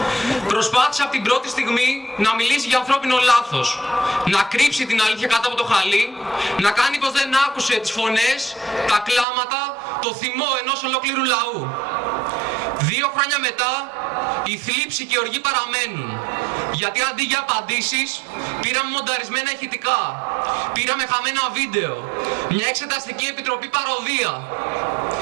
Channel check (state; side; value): drops out; left; at 9.2 s